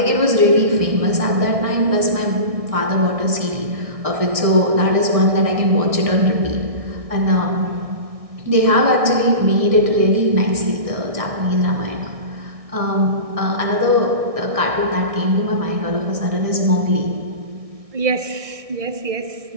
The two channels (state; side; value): late; left; 1.6 ms